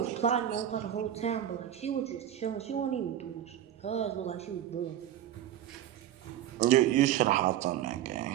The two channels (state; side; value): quieter; left; 11.3 dB